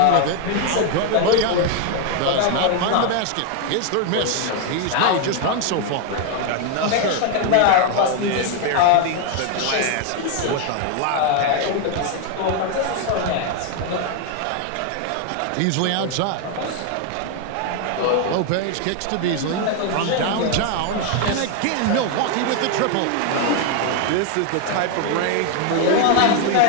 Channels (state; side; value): different; both; correlation 0.01